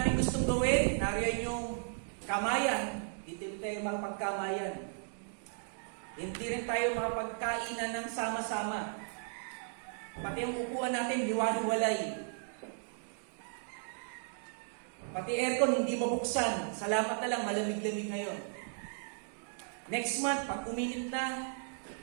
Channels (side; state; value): left; silent; digital silence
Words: gustong gawin, nariyan yung kamayan, dito tayo makapagkamayan. Hindi rin tayo makapagkainan ng sama-sama. Pati ang upuan natin, hiwa-hiwalay. Pati aircon, hindi mabuksan. Salamat na lang, malamig-lamig ngayon. Next month, pag uminit na,